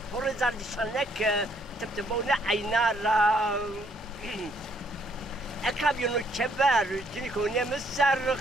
هورزار دي شنك تبتبونا عينارا اكابيونو كبر جنيكو نمسر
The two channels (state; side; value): normal; both; correlation 0.68